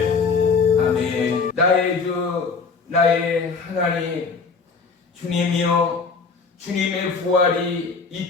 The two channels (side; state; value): right; quieter; 4.8 dB